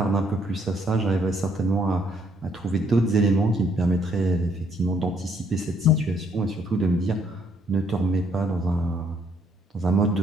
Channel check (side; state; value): both; normal; correlation 0.68